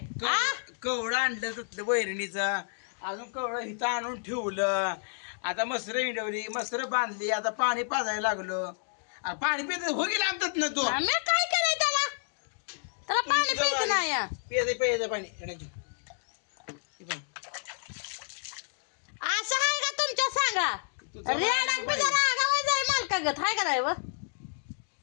कवडं आणलं तिथलं वैरणीचा, अजून कवडं इथं आणून ठेवलं. आता मसर हिडवली, मसर बांधली, आता पाणी पाजायला लागलो. पाणी पित हो गेलं आमच्यात ना तू. मी काय केलंय त्याला? त्याला पाणी पित नाही. पेज पाणी येण्याची. असं आहे का तुमच्या सांगा? मालकागत हाय का नाही व?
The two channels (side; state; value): right; silent; digital silence